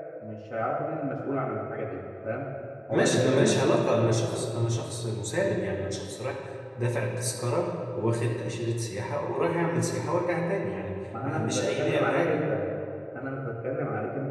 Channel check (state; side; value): identical; both; correlation 1.00